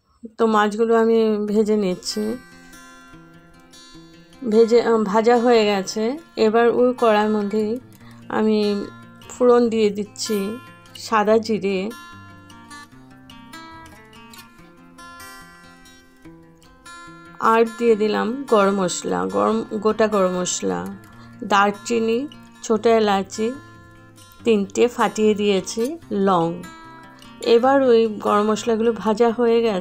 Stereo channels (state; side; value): identical; both; correlation 1.00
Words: তো মাছগুলো আমি ভেজে নিচ্ছি। ভাজা হয়ে গেছে। এবার ওই কড়াইয়ের মধ্যে আমি ফোড়ন দিয়ে দিচ্ছি সাদা জিরে, আর দিয়ে দিলাম গরম মশলা, গোটা গরম মশলা, দারচিনি, ছোটো এলাচি 3টে ফাটিয়ে দিয়েছি, লং। এবার ওই গরম মশলাগুলো ভাজা হয়ে